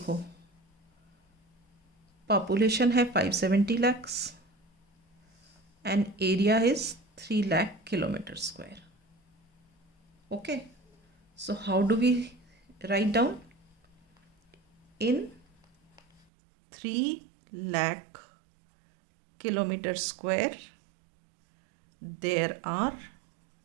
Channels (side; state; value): left; drops out; at 16.2 s